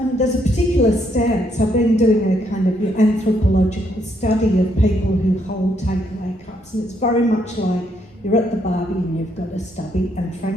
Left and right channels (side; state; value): both; normal; correlation 0.73